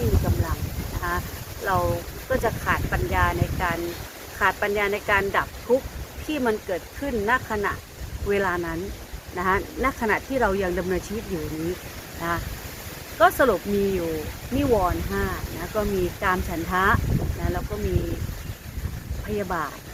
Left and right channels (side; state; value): both; identical; correlation 1.00